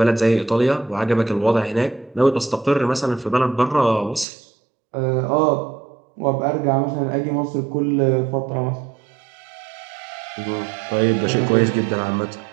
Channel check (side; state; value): left; drops out; at 4.2 s